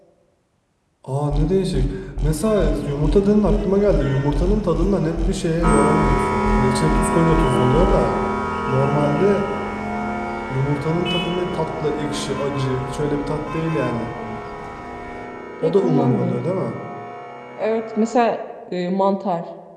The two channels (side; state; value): both; identical; correlation 1.00